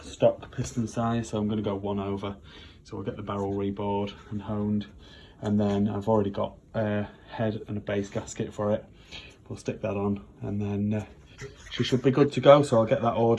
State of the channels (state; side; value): identical; both; correlation 1.00